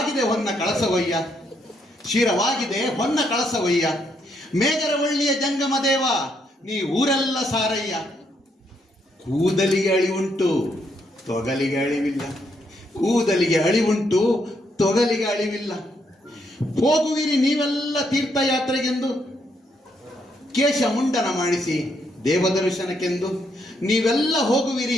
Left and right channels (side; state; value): both; normal; correlation 0.75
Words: ಹೊನ್ನ ಕಳಸವಯ್ಯ, ಶಿರವಾಗಿದೆ ಹೊನ್ನ ಕಳಸವಯ್ಯ. ಮೇಗರವಳ್ಳಿಯ ಜಂಗಮ ದೇವ, ನೀ ಊರೆಲ್ಲ ಸಾರಯ್ಯ. ಕೂದಲಿಗೆ ಅಳಿವುಂಟು ತೊಗಲಿಗೆ ಅಳಿವಿಲ್ಲ, ಕೂದಲಿಗೆ ಅಳಿವುಂಟು ತೊಗಲಿಗೆ ಅಳಿವಿಲ್ಲ. ಹೋಗುವಿರಿ ನೀವೆಲ್ಲ ತೀರ್ಥಯಾತ್ರೆಗೆಂದು, ಕೇಶ ಮುಂಡನ ಮಾಡಿಸಿ ದೇವದರ್ಶನಕ್ಕೆಂದು. ನೀವೆಲ್ಲ